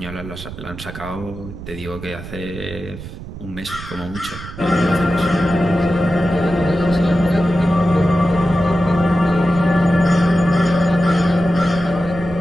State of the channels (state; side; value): noise; right; rumble, 12 dB below the sound